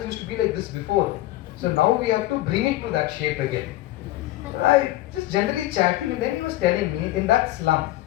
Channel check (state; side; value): quieter; right; 16.1 dB